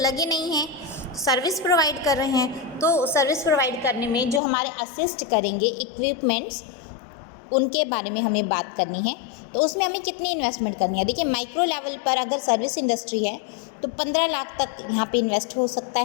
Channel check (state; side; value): drops out; right; at 4.4 s